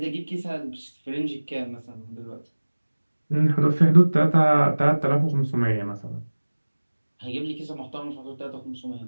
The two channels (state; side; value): inverted; both; correlation -1.00